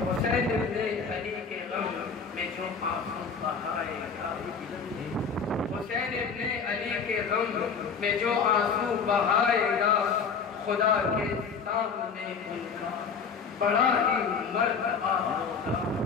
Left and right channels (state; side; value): quieter; right; 5.7 dB